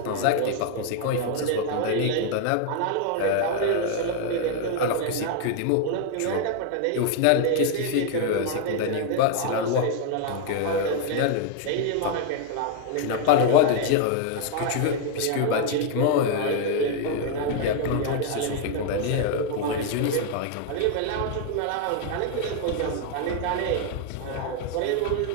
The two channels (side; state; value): both; different; correlation 0.00